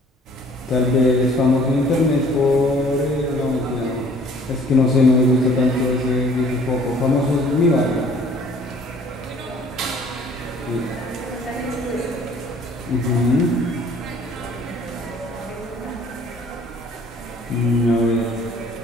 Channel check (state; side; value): normal; both; correlation 0.54